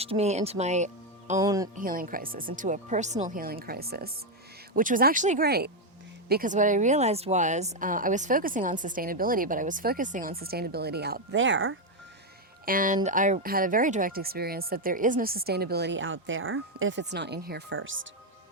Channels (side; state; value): both; normal; correlation 0.03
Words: me into my own healing crisis, into a personal healing crisis, which was actually great. Because what I realized was I was focusing on sustainability, but I was focusing on sustainability out there. And I had a very direct experience that there is no sustainability out there if it's not in here first.